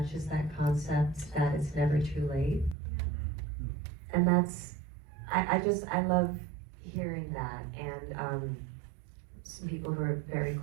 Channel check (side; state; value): left; drops out; at 2.8 s